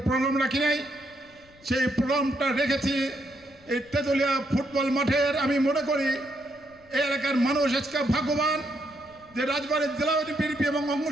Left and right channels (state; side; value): noise; left; rumble, 28 dB below the sound